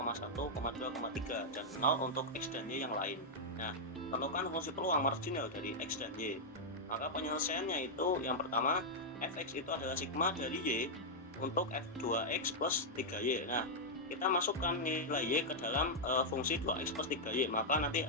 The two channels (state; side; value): normal; both; correlation -0.05